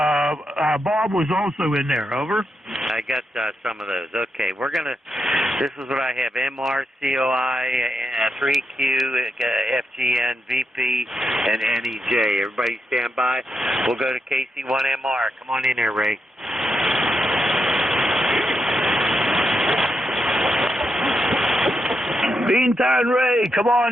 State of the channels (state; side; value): normal; both; correlation 0.84